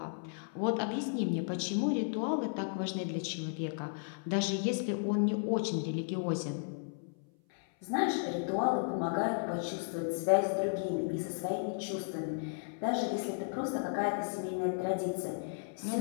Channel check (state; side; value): silent; right; 55 dB below the other